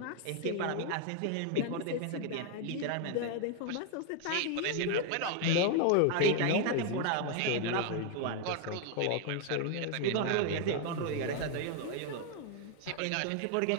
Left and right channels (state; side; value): different; both; correlation 0.00